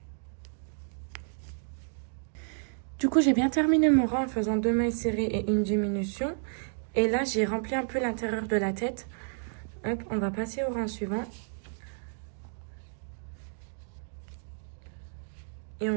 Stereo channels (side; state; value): left; silent; digital silence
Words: Du coup, j'ai bien terminé mon rang en faisant 2 mailles serrées et une diminution. Et là, j'ai rempli un peu l'intérieur de la tête. Hop, on va passer au rang suivant. Et